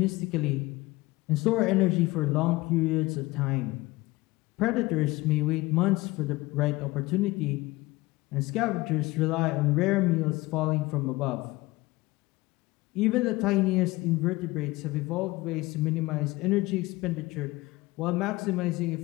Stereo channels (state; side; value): quieter; right; 20.5 dB